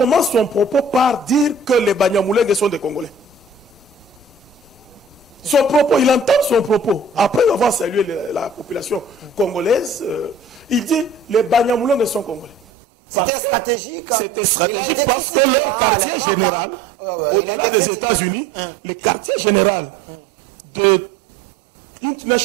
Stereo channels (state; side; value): drops out; left; at 12.7 s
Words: son propos par dire que les Banyamulenge sont des Congolais. Son propos, il entend son propos. Après avoir salué la population congolaise, il dit les Banyamulenge sont Congolais. C'était stratégique. C'était stratégique parce que leur quartier général, au-delà des États-Unis, le quartier général de